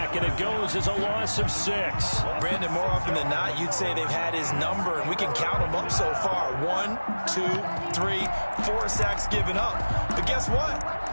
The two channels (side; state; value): both; inverted; correlation -1.00